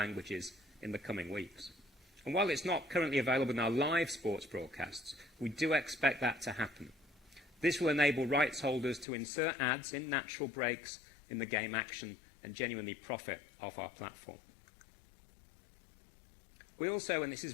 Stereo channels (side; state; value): right; drops out; at 9.1 s